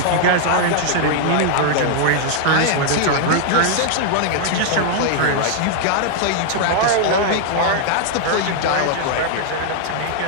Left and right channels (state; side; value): different; both; correlation -0.01